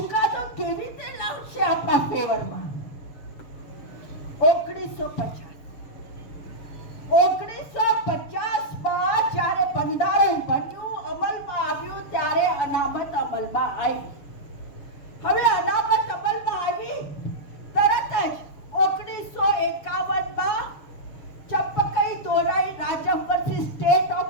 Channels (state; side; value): late; right; 6.9 ms